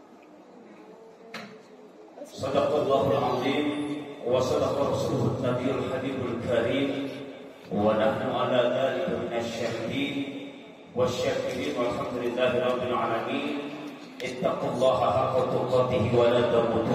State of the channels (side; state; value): both; identical; correlation 1.00